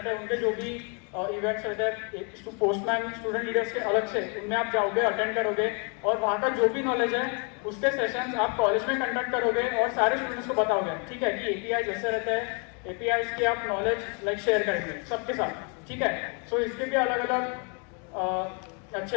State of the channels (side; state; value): right; quieter; 36.8 dB